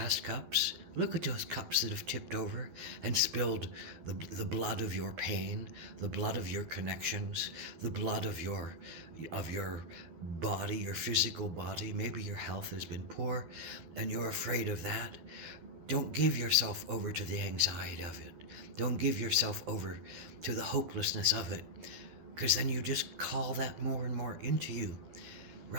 cups. Look at those cups that have tipped over and spilled the blood of your pain, the blood of your connections, the blood of your body, your physical body. Maybe your health has been poor and you're afraid of that. Don't give yourself over to the anxiety of it. Don't give yourself over to the hopelessness of it, because then you just call that more and more into you.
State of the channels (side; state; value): left; late; 12 ms